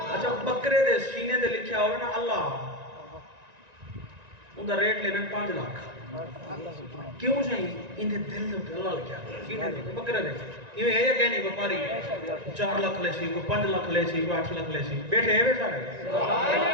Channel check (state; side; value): late; left; 1.9 ms